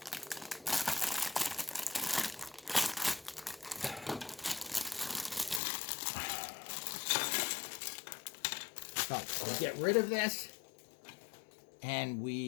So we'll get rid of this, and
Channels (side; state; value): right; drops out; at 5.6 s